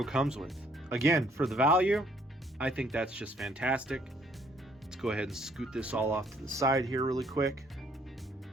comes with. Again, for the value, I think that's just fantastic. Let's go ahead and scoot this all off to the side here really quick.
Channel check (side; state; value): both; normal; correlation 0.64